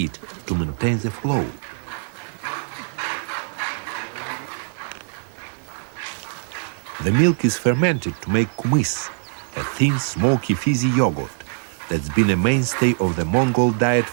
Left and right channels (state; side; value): silent; left; digital silence